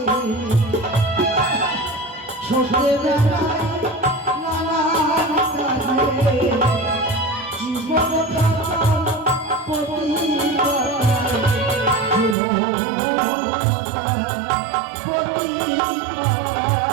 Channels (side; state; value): left; drops out; at 12.4 s